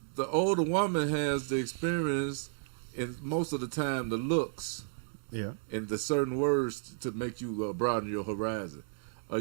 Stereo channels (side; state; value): left; silent; digital silence